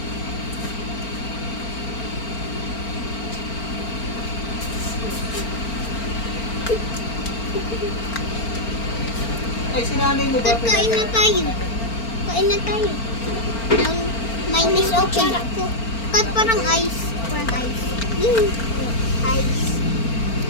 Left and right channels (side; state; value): right; late; 4.4 ms